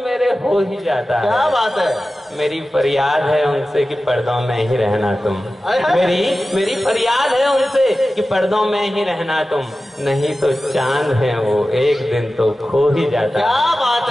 मेरे हो ही जाता है। क्या बात है। मेरी फरियाद है उनसे कि पर्दों में ही रहना तुम, मेरी फरियाद है उनसे कि पर्दों में ही रहना तुम, नहीं तो चांद है वो एक दिन तो खो ही जाता है। क्या बात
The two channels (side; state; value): both; normal; correlation 0.95